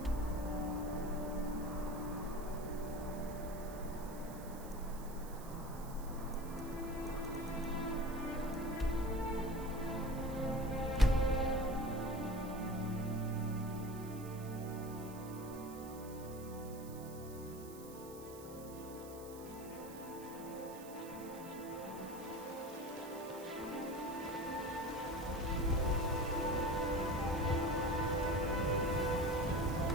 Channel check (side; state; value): right; noise; hiss, 17 dB below the sound